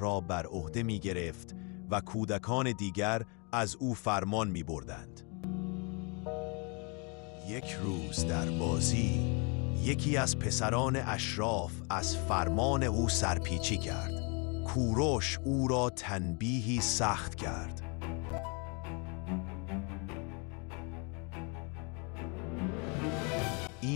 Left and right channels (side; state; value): right; quieter; 33.5 dB